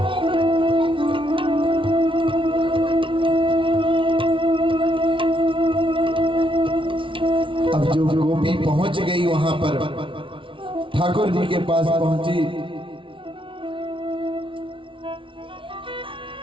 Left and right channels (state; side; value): late; left; 0.25 ms